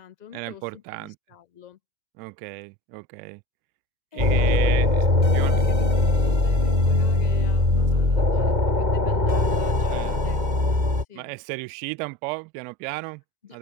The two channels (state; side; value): late; left; 2.1 ms